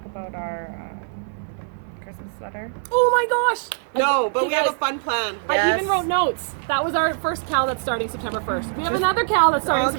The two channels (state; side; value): silent; left; 62 dB below the other